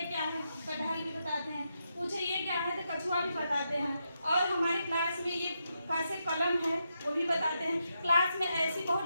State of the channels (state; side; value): inverted; both; correlation -0.83